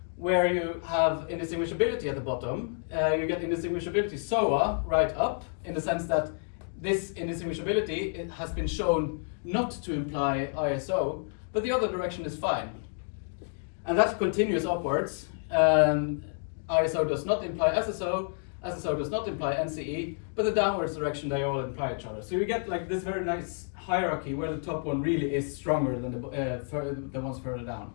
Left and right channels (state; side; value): silent; right; 58 dB below the other